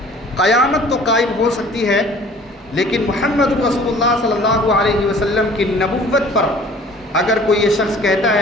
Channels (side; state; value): both; normal; correlation 0.50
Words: قیامت تو قائم ہو سکتی ہے، لیکن محمد رسول اللہ صلی اللہ علیہ وسلم کی نبوت پر اگر کوئی یہ شخص کہتا